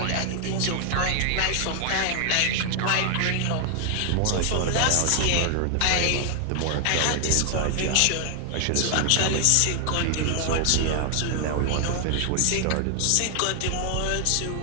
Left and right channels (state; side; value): different; both; correlation 0.00